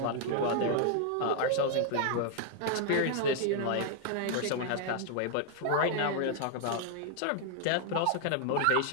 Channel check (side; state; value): both; different; correlation 0.00